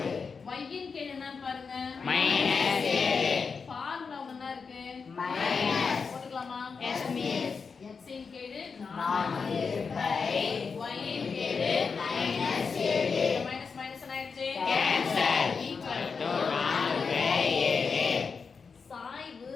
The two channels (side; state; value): right; quieter; 5.3 dB